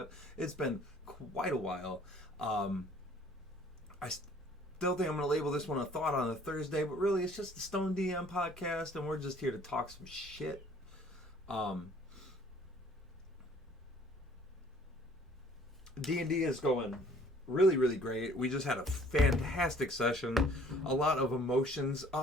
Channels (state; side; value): normal; both; correlation 0.55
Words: It's been quite a while. I still think I'm going to label this one a thought on a Thursday, but really it's just the Stone DM podcast, and we're just here to talk some shit. D&D is going really, really great. We just had a fantastic session. A lot of emotions,